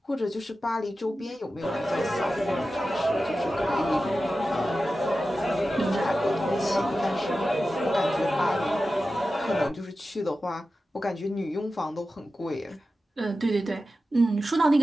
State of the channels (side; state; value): both; normal; correlation 0.93